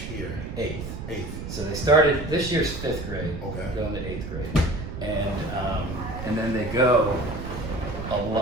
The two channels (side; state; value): right; noise; rumble, 7 dB below the sound